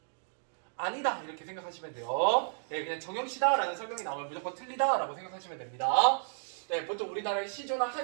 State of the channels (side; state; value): left; silent; digital silence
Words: 아니다, 이렇게 생각하시면 돼요. 그냥 정형시다 라는 설명이 나오면 무조건 틀리다 라고 생각하시면 됩니다. 보통 우리나라의 시조나